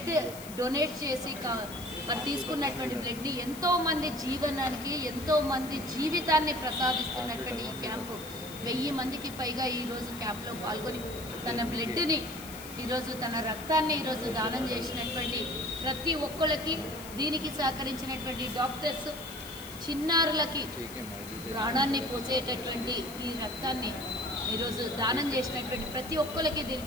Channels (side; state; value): left; noise; hiss, 15 dB below the sound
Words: డొనేట్ చేసి మరి తీసుకున్నటువంటి బ్లడ్ని ఎంతోమంది జీవనానికి ఎంతోమంది జీవితాన్ని ప్రసాదిస్తున్నటువంటి ఈ క్యాంపు 1000 మందికి పైగా ఈరోజు క్యాంప్లో పాల్గొని తన బ్లడ్ని ఈరోజు తన రక్తాన్ని ఈరోజు దానం చేసినటువంటి ప్రతి ఒక్కరికి, దీనికి సహకరించినటువంటి డాక్టర్స్, చిన్నారులకి ప్రాణాన్ని పోసేటటువంటి ఈ రక్తాన్ని ఈరోజు దానం చేసినటువంటి ప్రతి ఒక్కరికి,